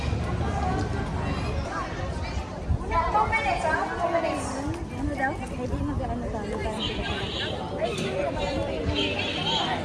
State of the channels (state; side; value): identical; both; correlation 1.00